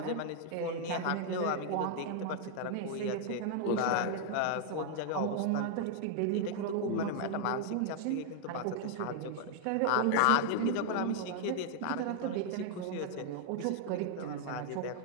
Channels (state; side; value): different; both; correlation 0.00